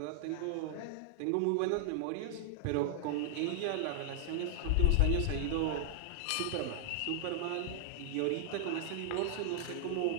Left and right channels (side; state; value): both; different; correlation -0.01